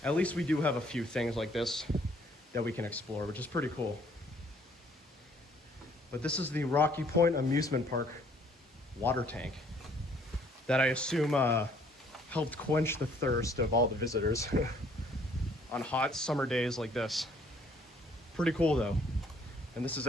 at least we do have a few things like this that we can explore, which is pretty cool. But this is the Rocky Point Amusement Park water tank that I assume helped quench the thirst of all the visitors on hot summer days like this. Pretty cool though. And this is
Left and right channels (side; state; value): both; normal; correlation 0.61